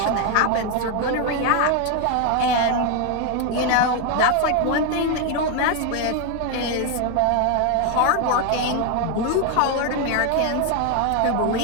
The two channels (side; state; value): both; different; correlation 0.01